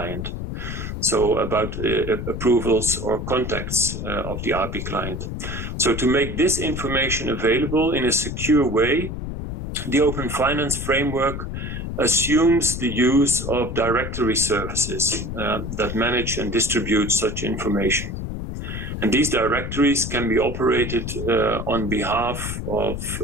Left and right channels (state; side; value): noise; left; rumble, 6 dB below the sound